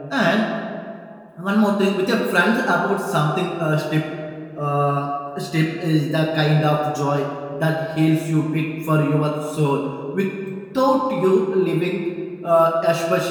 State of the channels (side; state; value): both; identical; correlation 1.00